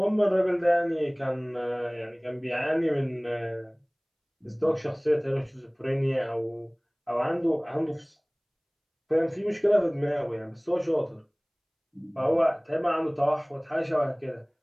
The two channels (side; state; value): both; identical; correlation 1.00